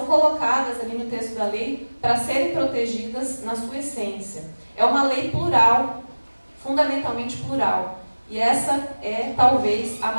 colocadas ali no texto da lei para serem protegidas na sua essência. É uma lei plural, fundamentalmente plural. E essa é, talvez, a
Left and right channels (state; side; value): inverted; both; correlation -1.00